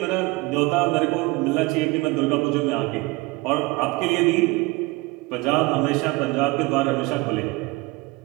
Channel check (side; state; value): left; quieter; 23.5 dB